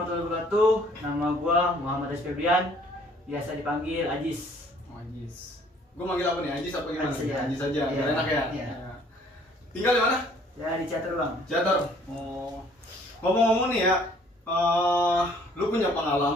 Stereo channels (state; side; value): normal; both; correlation 0.59